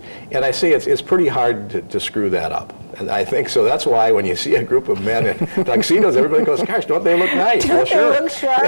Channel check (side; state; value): both; inverted; correlation -1.00